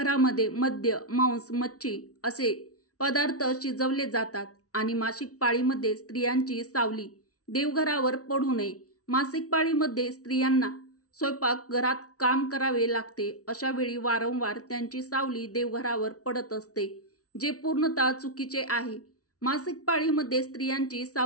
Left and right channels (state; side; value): late; right; 0.67 ms